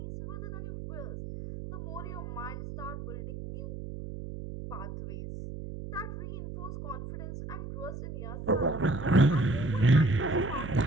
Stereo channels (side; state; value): right; noise; hum, 8 dB below the sound